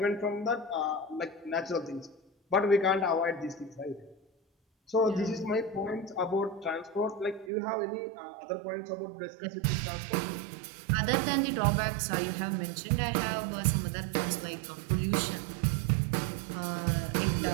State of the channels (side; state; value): left; drops out; at 7.5 s